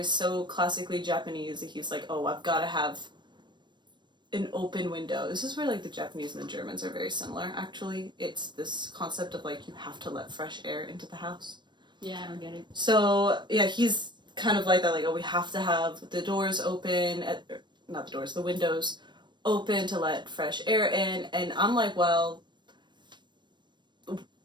so classically Japanese that he's like, oh, I've got to have an open window. This is where, like, the Japanese and the Germans are very similar, actually. It's this concept of, like, you have to let fresh air into the house. Yeah, I don't get it. So, yeah, he's kind of like that, like, oh, we have to have the doors open, not the doors, the windows open to let fresh air in, and I'm like, well,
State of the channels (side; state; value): left; late; 0.22 ms